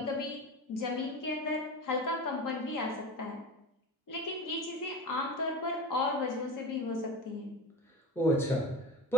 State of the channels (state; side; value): normal; both; correlation 0.27